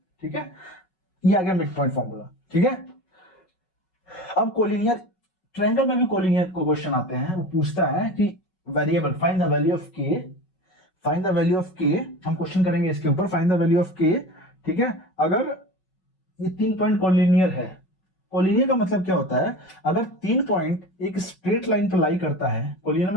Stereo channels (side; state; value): right; late; 5.3 ms